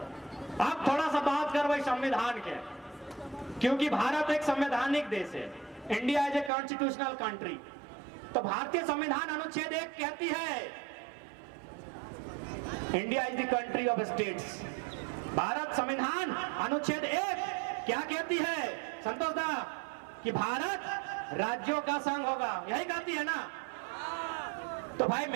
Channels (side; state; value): left; drops out; at 6.5 s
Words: अब थोड़ा सा बात करबे संविधान के, क्योंकि भारत एक संवैधानिक देश है, India is a constitutional country. तो भारतीय संविधान अनुच्छेद 1 कहती है India is the country of states. Bharat संविधान अनुच्छेद 1 क्या कहती है संतोष दा? कि भारत राज्यों का संघ होगा, यही कहती है ना? तो भाई